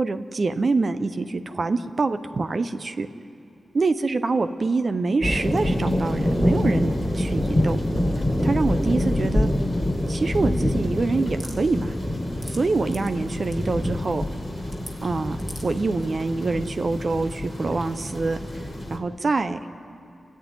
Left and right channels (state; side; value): normal; both; correlation 0.94